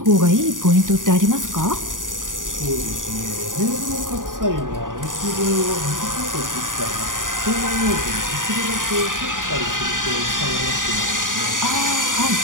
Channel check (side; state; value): left; late; 0.88 ms